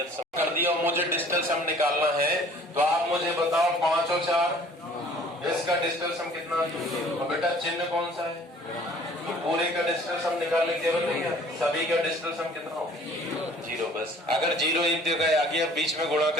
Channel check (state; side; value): normal; both; correlation 0.52